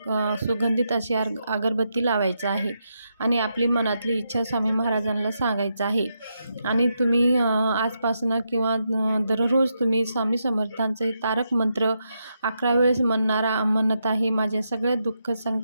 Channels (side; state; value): both; inverted; correlation -0.83